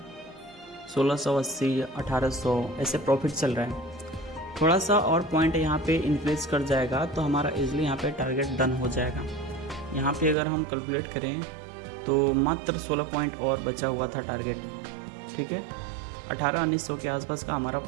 1680, 1800 ऐसे प्रॉफिट चल रहा है। थोड़ा सा और पॉइंट यहाँ पे इंक्रीज कर जाएगा तो हमारा इजीली यहाँ पे टारगेट डन हो जाएगा। यहाँ पे अगर हम कैलकुलेट करें तो मात्र 16 पॉइंट और बचा हुआ था टारगेट। ठीक है, 1800-1900 के आसपास का हमारा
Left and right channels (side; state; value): left; drops out; at 10.4 s